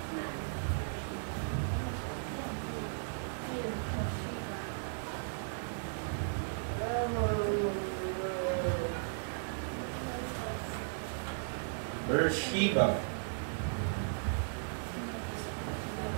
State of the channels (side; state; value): left; silent; digital silence